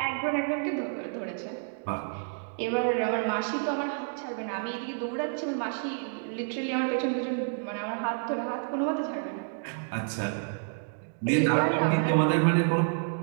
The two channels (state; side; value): silent; left; digital silence